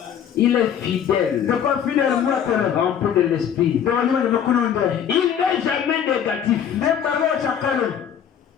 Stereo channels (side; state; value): right; quieter; 8.7 dB